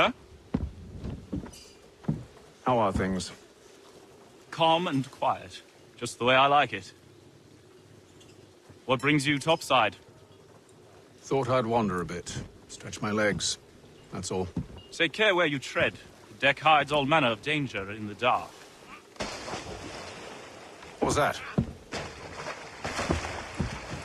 How are things? Calm and quiet. Just the way I like it. What brings you topside? Thought I'd wander a bit. Stretch my legs. That's all. Take care where you tread. The deck hides all manner of danger in the dark. What was that?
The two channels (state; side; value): identical; both; correlation 1.00